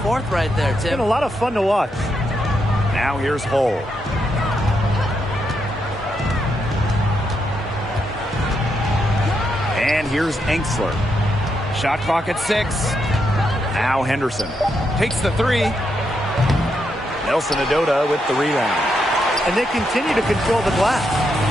right there, Tim. It's been a lot of fun to watch. Now here's Hull. And here's Enksler. Shot clock at 6. Now Henderson takes the three. Nelson Adota with the rebound. And they continue to control the glass.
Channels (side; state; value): both; normal; correlation 0.81